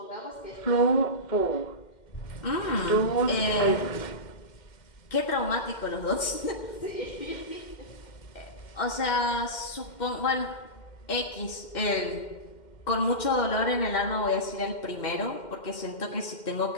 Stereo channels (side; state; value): right; late; 2.1 ms